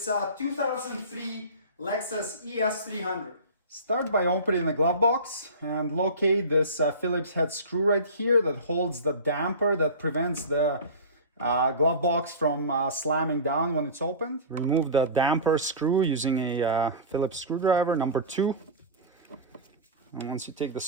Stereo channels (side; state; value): both; inverted; correlation -0.30